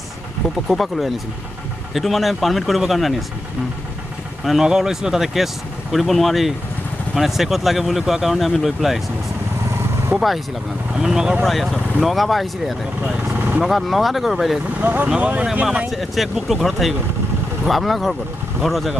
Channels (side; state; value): both; normal; correlation 0.90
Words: কোপা লৈ আনিছিল? সেইটো মানে পাৰ্মিট কৰিবৰ কাৰণে আনি আছিলোঁ। মানে নগাঁও লৈছিলোঁ, তাতে কেছ কৰিব নোৱাৰি, মানে চেকত লাগে বুলি কোৱাৰ কাৰণে আমি লৈ পেলাই আহিছিলোঁ। ক'ৰপৰা আহিছিল আপোনালোক? আমি নগাঁৱৰ পৰা আহি আছোঁ। নগাঁৱৰ পৰা আহিছিলে ইয়াতে? নগাঁৱতে কৰিব পাৰিলে? নগাঁও মানে আমাৰ চেক বুকটো ঘৰত থাকি গ'ল। আপোনাৰ ঘৰ ক'ত? ঘৰ